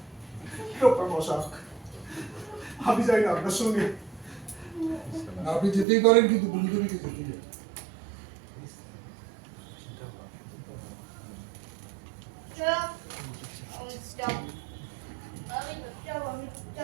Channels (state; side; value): drops out; left; at 5.9 s